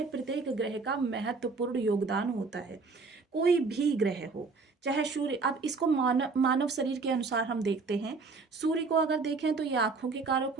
प्रत्येक ग्रह का महत्वपूर्ण योगदान होता है। कोई भी ग्रह हो, चाहे सूर्य, अब इसको मानव शरीर के अनुसार हम देखते हैं। सूर्य को अगर देखें तो ये आंखों के कारक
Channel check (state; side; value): quieter; left; 4.3 dB